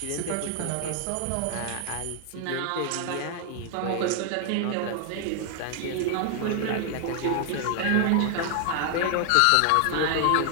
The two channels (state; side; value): different; both; correlation 0.00